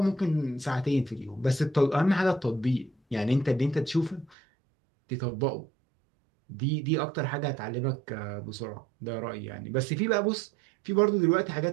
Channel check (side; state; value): left; drops out; at 4.4 s